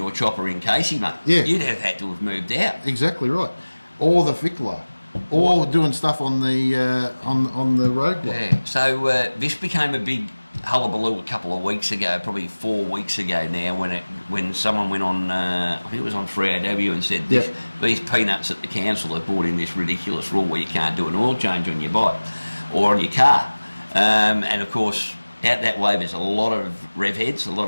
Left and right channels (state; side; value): inverted; both; correlation -1.00